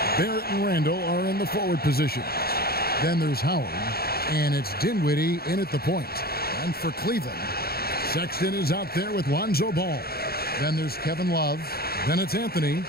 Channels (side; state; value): right; late; 0.45 ms